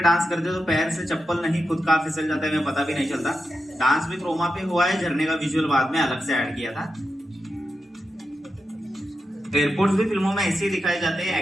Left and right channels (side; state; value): both; normal; correlation 0.89